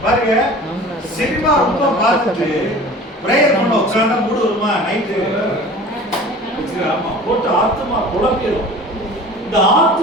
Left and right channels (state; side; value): normal; both; correlation 0.41